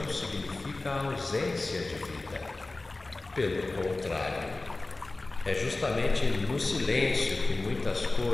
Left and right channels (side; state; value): right; quieter; 3.1 dB